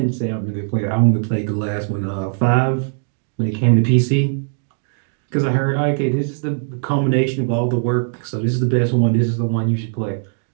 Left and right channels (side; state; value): left; silent; digital silence